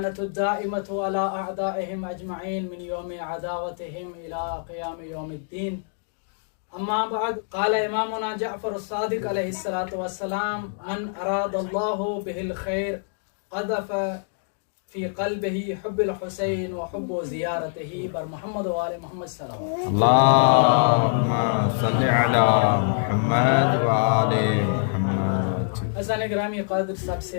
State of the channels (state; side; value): silent; right; digital silence